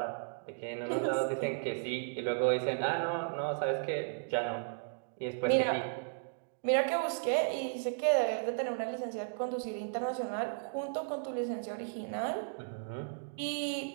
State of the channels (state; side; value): silent; left; digital silence